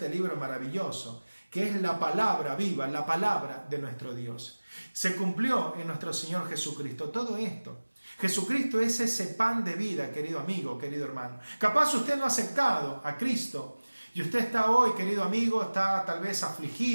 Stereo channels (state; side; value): inverted; both; correlation -1.00